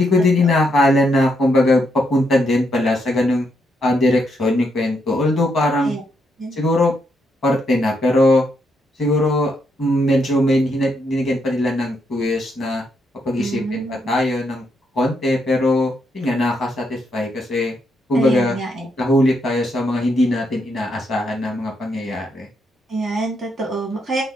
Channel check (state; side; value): normal; both; correlation 0.78